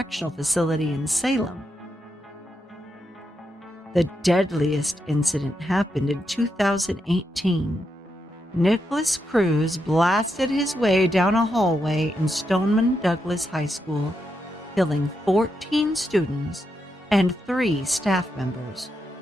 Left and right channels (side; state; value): both; normal; correlation 0.84